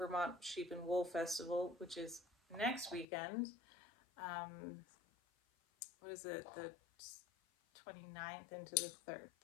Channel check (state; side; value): drops out; right; at 3.1 s